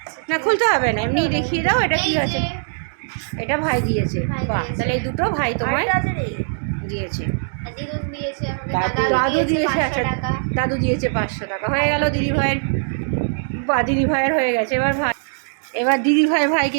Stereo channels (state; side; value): silent; left; digital silence